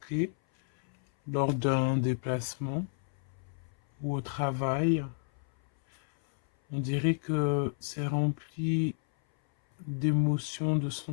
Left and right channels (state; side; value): silent; right; 57 dB below the other